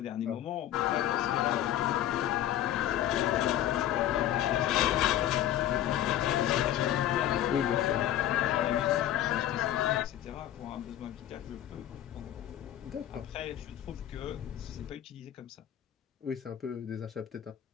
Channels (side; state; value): right; quieter; 12.2 dB